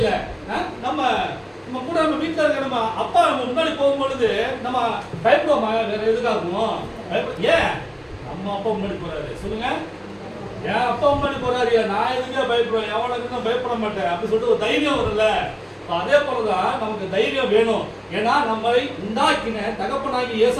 நம்ம கூட நம்ம வீட்டில் இருக்க நம்ம அப்பா நம்ம முன்னாடி போகும்பொழுது நம்ம பயப்படுவோமா? வேற எதுக்காகும்? ஏன் நம்ம அப்பா முன்னாடி போறாரு? சொல்லுங்க. ஏன் அப்பா முன்னாடி போறாரு, நான் எதுக்கே பயப்படுவேன், எவனுக்கு நான் பயப்பட மாட்டேன் அப்படின்னு சொல்லிட்டு ஒரு தைரியம் வரும்ல. அதே போலதான் நமக்கு தைரியம் வேணும். ஏன்னா நம்மளை உண்டாக்கின தகப்பனாகி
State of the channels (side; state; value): both; identical; correlation 1.00